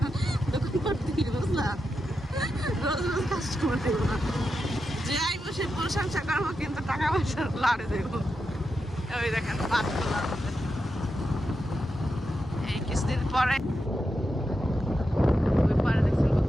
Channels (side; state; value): both; normal; correlation 0.87